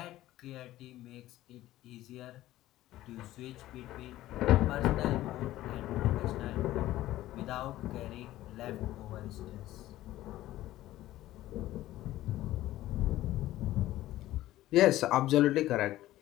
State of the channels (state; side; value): quieter; right; 15.2 dB